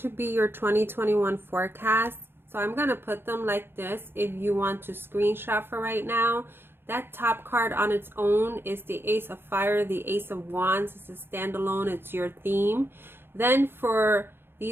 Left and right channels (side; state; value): left; late; 0.11 ms